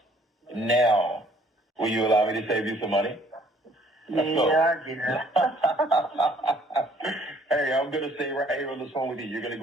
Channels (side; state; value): both; normal; correlation 0.60